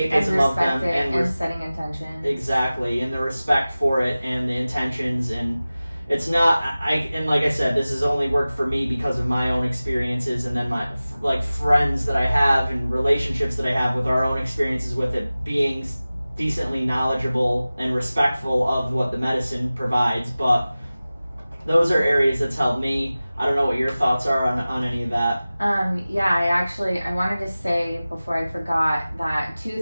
of them, and setting intentions. Exactly, and the respect for it and the intentions. And it's not, and like I said, this has only worked for me because of my own experiences, and then my like friends that I have and relationships that I have with our own experiences with it, being decently knowledgeable and respectful of what the medicine provides. But those are areas that's helped me. I don't know what your thoughts are on any of that. I wanted to say before I forgot that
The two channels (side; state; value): both; inverted; correlation -0.97